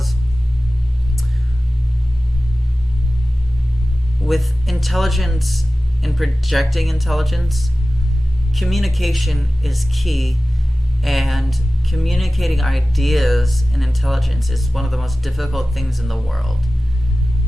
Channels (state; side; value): normal; both; correlation 0.95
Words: with intelligence in projecting intelligence, communication is key, and communicating ideas and intelligence is one of the most difficult things in the world.